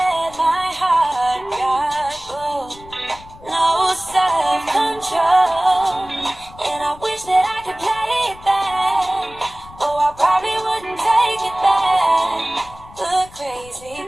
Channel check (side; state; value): left; noise; rumble, 20 dB below the sound